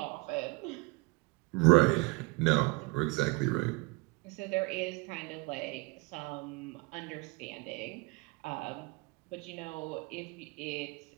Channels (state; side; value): quieter; left; 25.8 dB